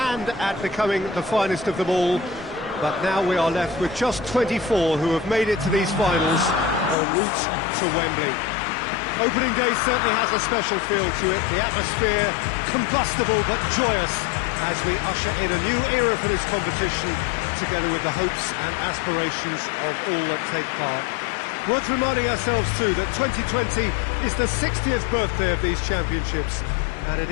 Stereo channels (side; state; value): right; drops out; at 7.0 s